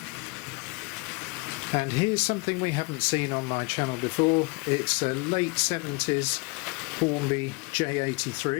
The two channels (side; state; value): right; quieter; 27.8 dB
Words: And here's something we haven't seen on my channel before. It's a late 70s Hornby